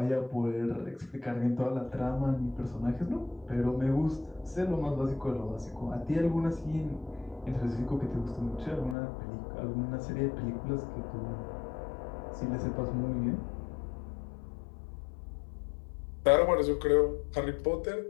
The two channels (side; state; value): right; drops out; at 9.0 s